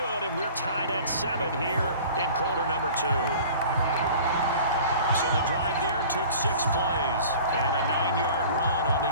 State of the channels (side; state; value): both; inverted; correlation -0.44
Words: and we're tied at 7 here in quarter number 2. So the drive there took 6 plays and a 9-yard run on the